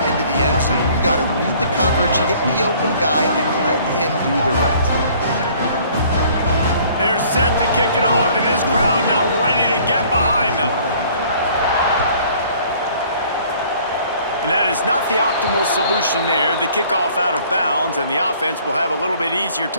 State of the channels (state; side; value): inverted; both; correlation -0.56